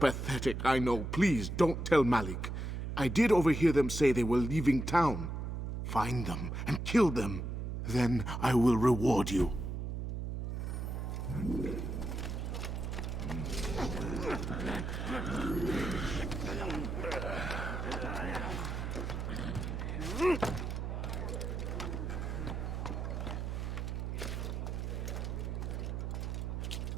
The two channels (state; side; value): noise; right; hum, 3 dB below the sound